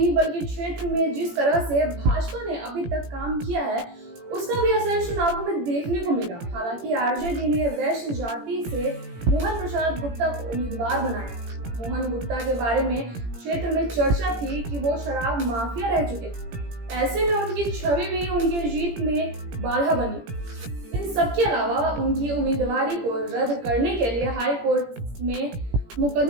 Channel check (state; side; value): late; left; 17 ms